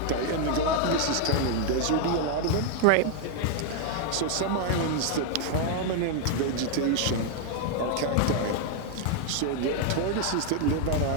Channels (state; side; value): different; both; correlation 0.00